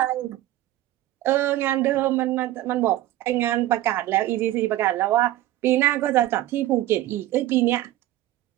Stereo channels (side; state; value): left; quieter; 14.9 dB